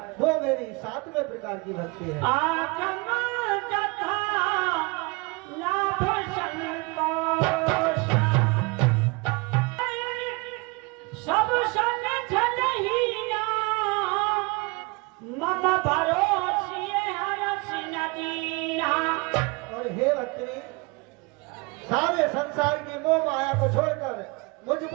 वो मेरी सातवें प्रकार की भक्ति है। सब संग मम भरोसिए हरस नदीना। और हे भक्तनी, सारे संसार की मोह माया को छोड़कर मुझ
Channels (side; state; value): left; quieter; 27.5 dB